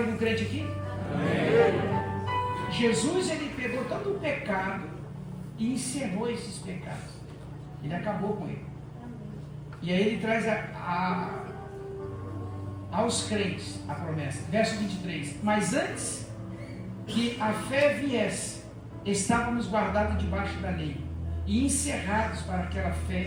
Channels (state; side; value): identical; both; correlation 1.00